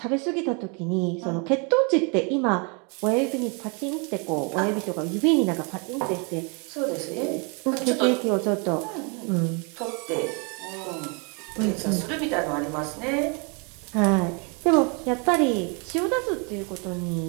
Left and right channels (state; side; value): quieter; left; 34.1 dB